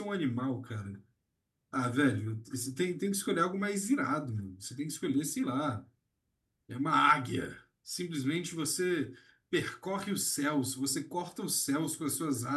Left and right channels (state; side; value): identical; both; correlation 1.00